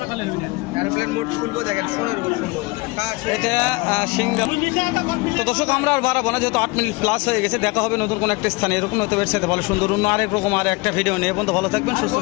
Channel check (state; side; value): quieter; right; 25.4 dB